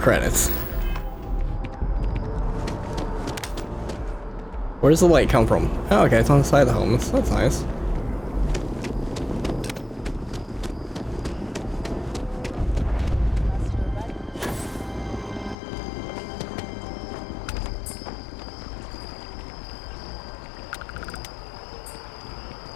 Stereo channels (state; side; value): drops out; right; at 15.6 s